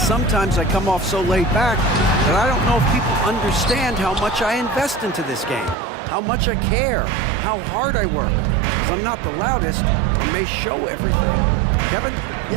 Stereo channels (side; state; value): left; drops out; at 5.8 s